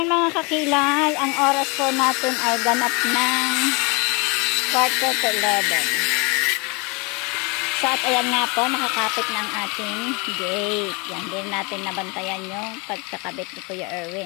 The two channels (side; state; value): right; quieter; 29.7 dB